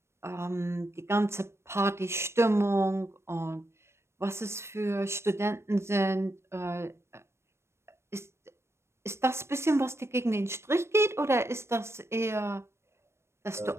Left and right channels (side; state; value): left; late; 0.13 ms